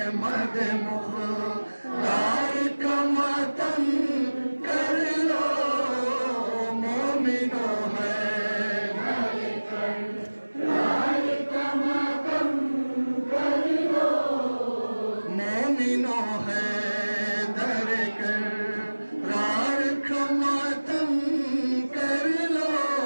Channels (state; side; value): inverted; both; correlation -1.00